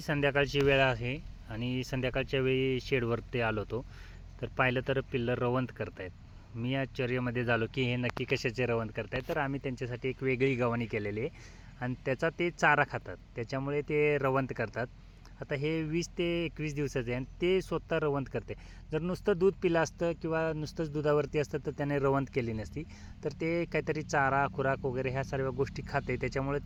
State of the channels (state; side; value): identical; both; correlation 1.00